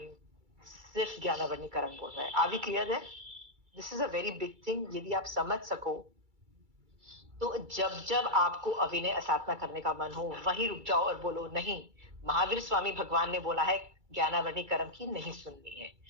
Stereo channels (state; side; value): late; left; 2.3 ms